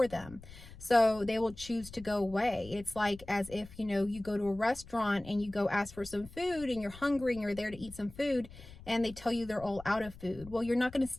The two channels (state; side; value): noise; left; rumble, 18 dB below the sound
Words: them. So they will choose to go away. It's like as if, you go to a restaurant and you go ask for some food and you're hungry and you're there to eat some food, and they tell you they're all out of food. Well, you're not going to